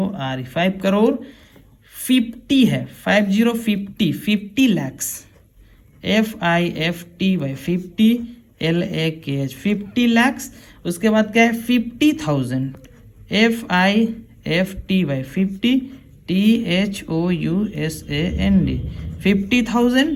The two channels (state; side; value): identical; both; correlation 1.00